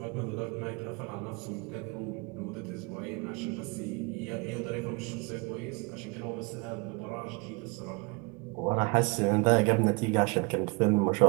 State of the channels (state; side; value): quieter; left; 29.3 dB